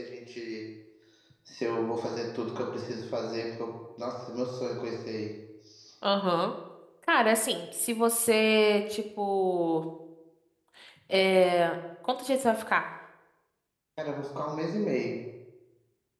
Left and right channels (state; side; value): identical; both; correlation 1.00